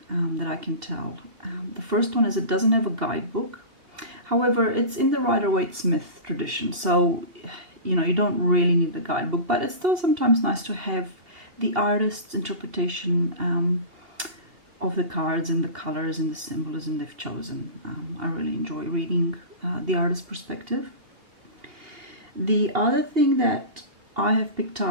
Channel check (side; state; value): left; late; 2.8 ms